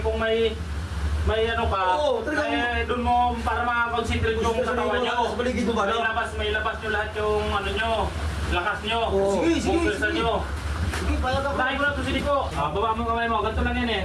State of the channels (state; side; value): identical; both; correlation 1.00